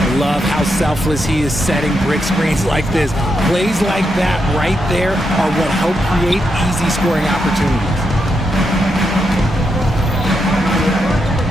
love how selfless he is setting brick screens like this. Plays like that right there are what help create easy scoring opportunities.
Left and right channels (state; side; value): normal; both; correlation 0.83